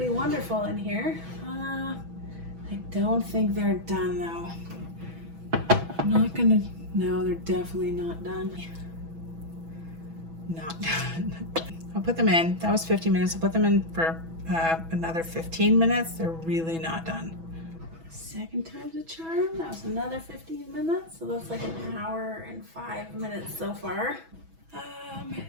wonderful in here. I don't think they're done though. I'm not gonna, no, they're definitely not done. Not done. I'll put them in. That was 50 minutes. I'll put them in for another 15 minutes. They're really not done. Second time's a charm. That was another 15 minutes. So that's like an hour and 5 minutes so far.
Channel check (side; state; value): left; late; 6.1 ms